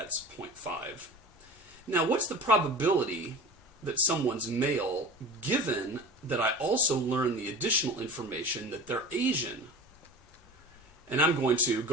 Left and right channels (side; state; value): both; normal; correlation 0.35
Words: 0.5. Now, what's the probability that someone's male, given that I also learn the additional information that they're Asian? And I'm going to